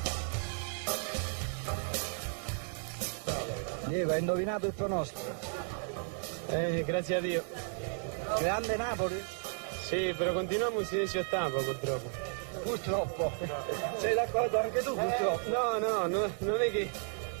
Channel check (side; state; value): left; silent; 55 dB below the other